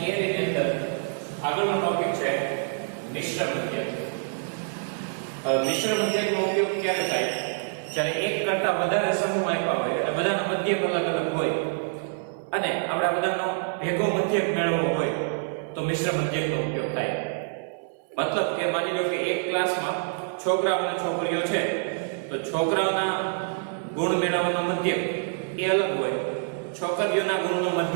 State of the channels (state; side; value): silent; left; 57 dB below the other